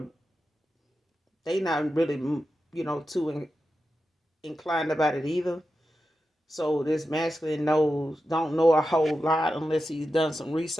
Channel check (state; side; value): normal; both; correlation 0.91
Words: they not really, too inclined about it either. So this masculine don't know a whole lot unless he's done some